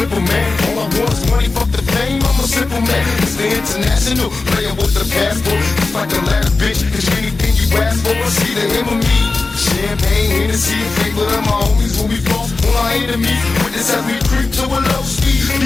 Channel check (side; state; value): right; quieter; 3.7 dB